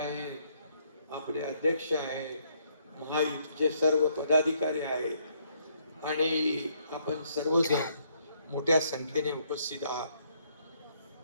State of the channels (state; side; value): inverted; both; correlation -0.70